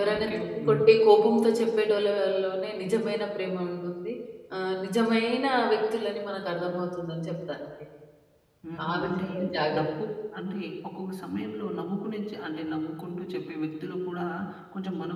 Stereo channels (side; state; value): both; identical; correlation 1.00